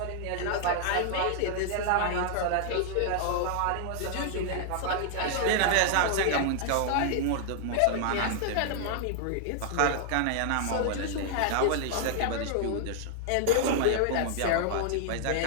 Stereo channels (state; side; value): different; both; correlation -0.01